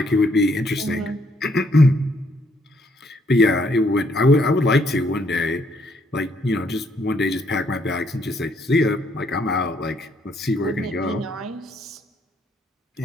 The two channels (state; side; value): normal; both; correlation 0.70